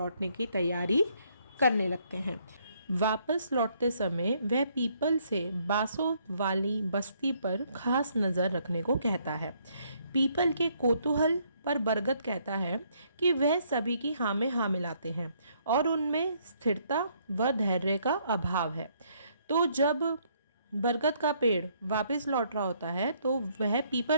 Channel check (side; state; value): both; inverted; correlation -0.69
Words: की तैयारी करने लगते हैं। वापस लौटते समय वह पीपल से बांसों वाली बस्ती पर खास नज़र रखने को कहता है। पीपल के कौतूहल पर बरगद कहता है कि वह सभी की हाँ में हाँ मिलाते हैं और उनमें स्थिरता व धैर्य का अभाव है। तो जब बरगद का पेड़ वापस लौट रहा होता है तो वह